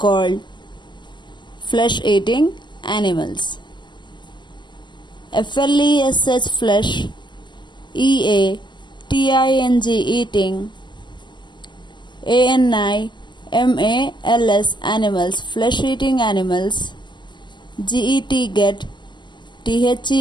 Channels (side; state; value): right; late; 0.22 ms